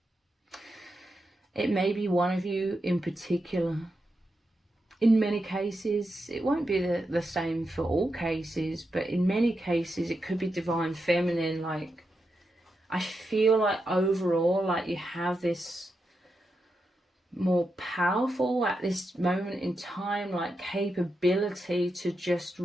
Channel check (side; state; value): both; normal; correlation 0.86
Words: it may be one of you in particular. In many cases, it won't be the same for all cases, but in many cases it could be divine feminine. Like, I feel like overall, like you have this more powerful at this moment in time, like capability to just